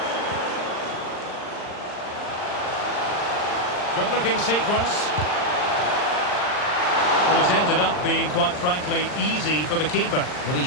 Good-looking sequence. Well, it's ended up being, quite frankly, easy for the keeper. Well, he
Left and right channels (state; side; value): late; right; 39 ms